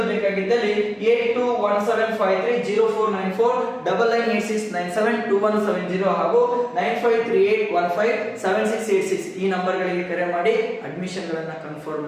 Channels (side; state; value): both; identical; correlation 1.00